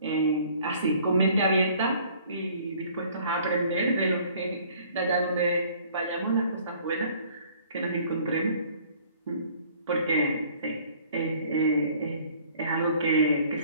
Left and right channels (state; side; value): inverted; both; correlation -0.55